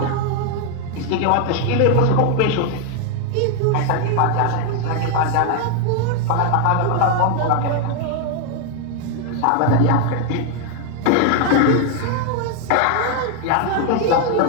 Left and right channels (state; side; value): different; both; correlation 0.01